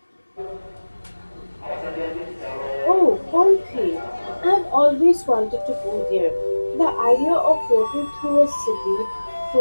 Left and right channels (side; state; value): both; inverted; correlation -1.00